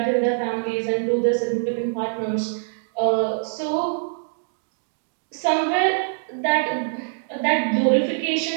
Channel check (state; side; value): silent; left; digital silence